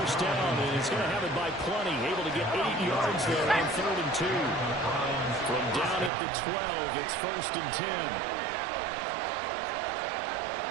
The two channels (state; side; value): drops out; left; at 6.1 s